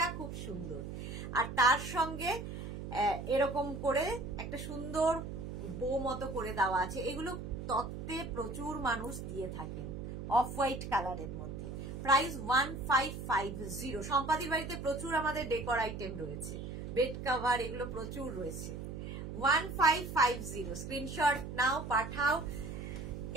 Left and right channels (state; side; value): noise; right; hum, 7 dB below the sound